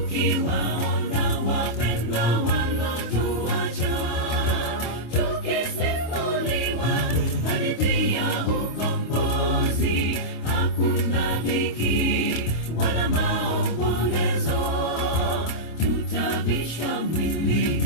wapendwa walotuacha, tukisimuliwa hadithi ya ukombozi. Hakuna dhiki wala maombolezo, tutavisha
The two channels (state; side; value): late; right; 26 ms